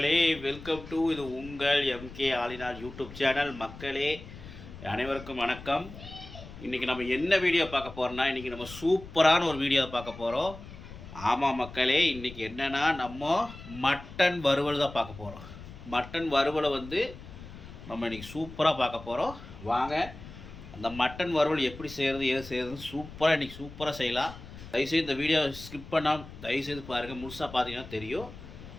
welcome to இது உங்கள் எம்கே ஆலினார் யூடியூப் சேனல். மக்களே அனைவருக்கும் வணக்கம். இன்றைக்கி நம்ம என்ன வீடியோ பார்க்க போகிறோம்னா, இன்றைக்கி நம்ம சூப்பரான ஒரு வீடியோ பார்க்க போகிறோம். ஆமாம் மக்களே, இன்றைக்கி என்னென்னா நம்ம மட்டன் வறுவல் தான் பார்க்க போகிறோம். மட்டன் வறுவலை நம்ம இன்றைக்கி சூப்பராக பார்க்க போகிறோம். வாங்க அந்த மட்டன் வறுவல் எப்படி செய்கிறது, ஏது செய்கிறதுன்னு சூப்பராக இன்றைக்கி சூப்பராக செய்யலாம். தயவுசெய்து இந்த வீடியோ ஸ்கிப் பண்ணாமல் தயவுசெய்து பாருங்கள். முழுசாக பார்த்தீங்கன்னா தெரியும்.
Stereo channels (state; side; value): noise; left; rumble, 15 dB below the sound